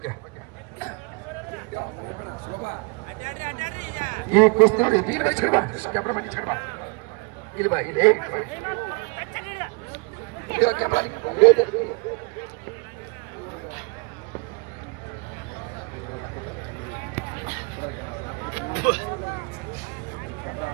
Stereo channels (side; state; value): left; quieter; 30.2 dB